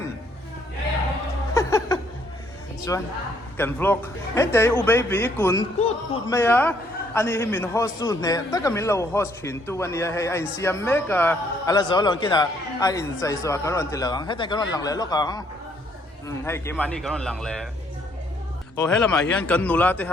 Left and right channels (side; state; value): both; normal; correlation 0.67